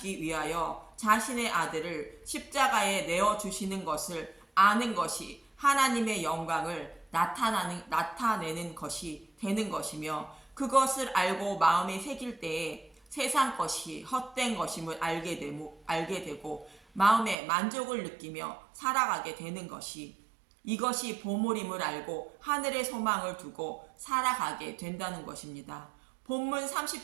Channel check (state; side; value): drops out; left; at 17.4 s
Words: 위하여 자신의 아들을 십자가에 내어주시는 것을 아는 것이 하나님의 영광을 나타내는 것이 되는 것이며, 그것을 알고 마음에 새길 때에 세상 것이 헛된 것임을 알게 되고 마음에 만족을 느끼며 살아가게 되는 것이, 이것이 보물임을 알고 하늘의 소망을 두고 살아가게 된다는 것입니다. 본문